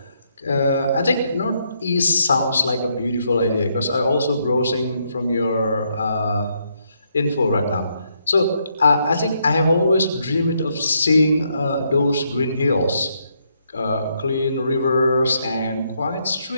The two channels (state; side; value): inverted; both; correlation -0.76